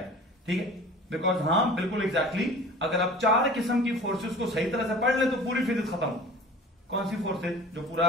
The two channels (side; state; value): both; normal; correlation 0.42